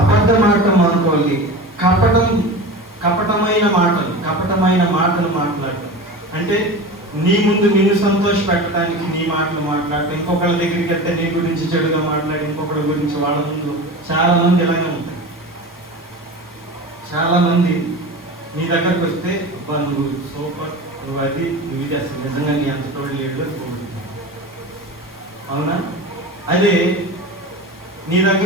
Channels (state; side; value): normal; both; correlation 0.31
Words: ఆడటం మానుకోవాలి, కపటమైన మాటలు మాట్లాడటం అంటే నీ ముందు నిన్ను సంతోష పెట్టడానికి నీ మాటలు మాట్లాడటం, ఇంకొకళ్ళ దగ్గరికి వెళ్తే నీ గురించి చెడుగా మాట్లాడి ఇంకొకళ్ళ గురించి వాళ్ళ ముందు. చాలా మంది ఇలాగే ఉంటాయి. చాలా మంది నీ దగ్గరకు వస్తే అబ్బా నువ్వు సూపర్, నువ్వు అది, నువ్వు ఇది, అసలు నిజంగా నీ అంత తోడు లేడు అని. అవునా? అదే నీ